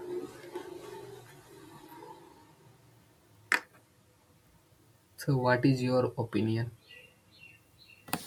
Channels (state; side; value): identical; both; correlation 1.00